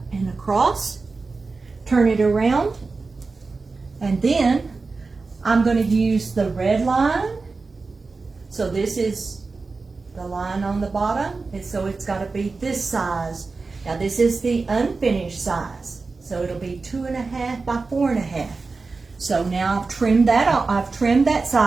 and across, turn it around, and then I'm going to use the red line. So this is the line on the bottom, and so it's got to be this size. Now this is the unfinished size, so it'll be 2.5 by 4.5. So now I've trimmed that off. I've trimmed that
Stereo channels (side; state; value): left; quieter; 4.1 dB